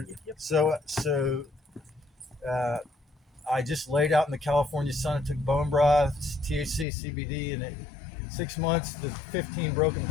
I just laid out in the California sun. I took bone broth, THC, CBD, and in 6 months, the 15 broken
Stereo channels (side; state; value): right; drops out; at 6.9 s